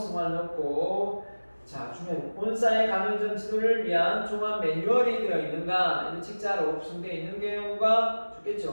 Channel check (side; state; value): both; inverted; correlation -1.00